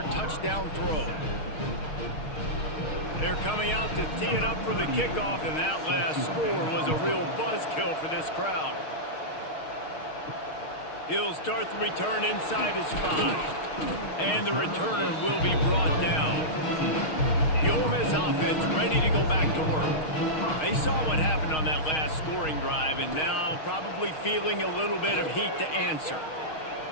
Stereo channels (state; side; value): late; right; 6.4 ms